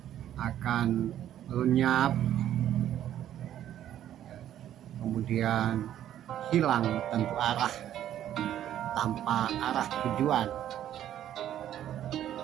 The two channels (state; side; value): quieter; left; 11.4 dB